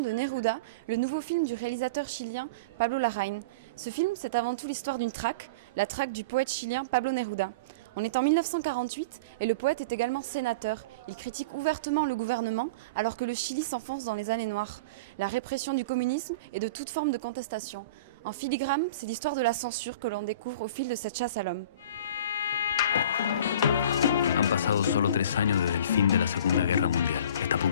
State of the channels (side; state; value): both; inverted; correlation -0.35